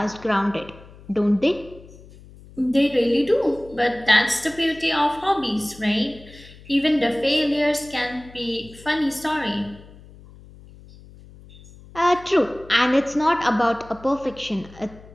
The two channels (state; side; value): noise; left; hum, 21 dB below the sound